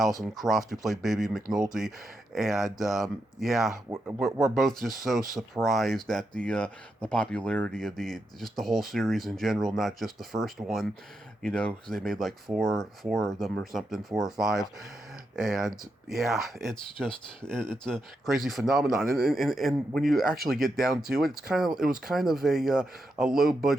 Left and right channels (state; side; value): normal; both; correlation 0.84